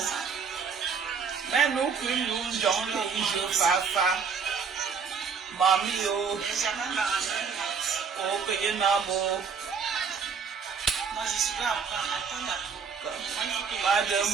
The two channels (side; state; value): left; quieter; 6.0 dB